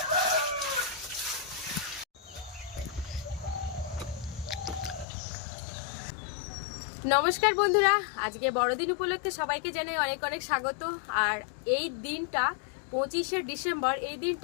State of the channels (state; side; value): drops out; right; at 5.1 s